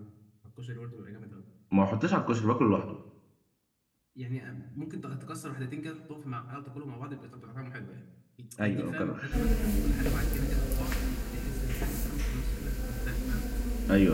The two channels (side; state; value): both; identical; correlation 1.00